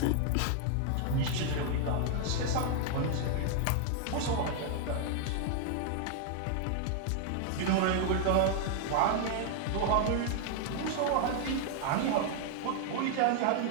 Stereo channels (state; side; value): different; both; correlation 0.00